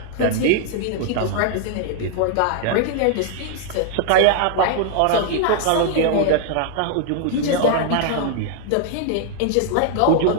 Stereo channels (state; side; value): different; both; correlation 0.00